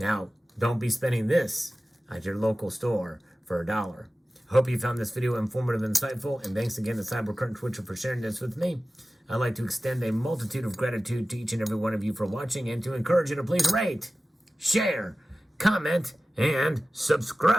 don't be spending this at your local store for $1. Hope you found this video informative and insightful, and thanks again to CyberCurrent Twitcher for sharing this with me. I'd like to extend a multitude of gratitude to each and every one of you for watching, and to encourage you to please rate, share, comment, and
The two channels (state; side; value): normal; both; correlation 0.96